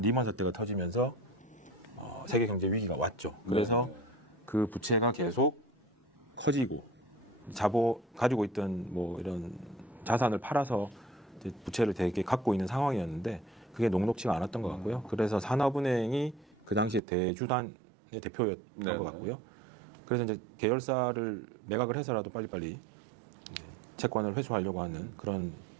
사태가 터지면서 세계 경제 위기가 왔죠. 그래서 그 부채가 계속 커지고 가지고 있던 뭐 이런 자산을 팔아서 이제 부채를 되게 갖고 있는 상황이었는데 그게 녹록지가 않았던 것 같고요. 그래서 산업은행이 그 당시에 대주단의 대표였던 네. 것 같고요. 그래서 이제 계열사를 매각을 해서라도 빨리빨리 채권을 회수하려고 하는 그런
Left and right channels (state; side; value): drops out; left; at 17.0 s